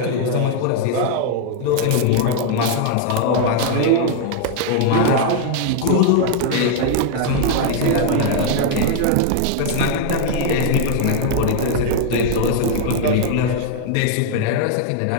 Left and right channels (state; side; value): different; both; correlation 0.00